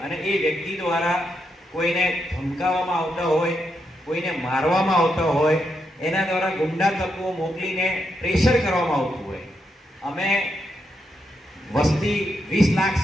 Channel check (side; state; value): both; normal; correlation 0.82